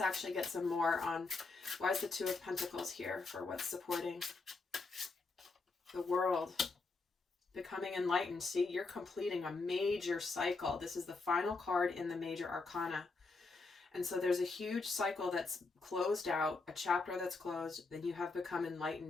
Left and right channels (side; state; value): right; quieter; 3.9 dB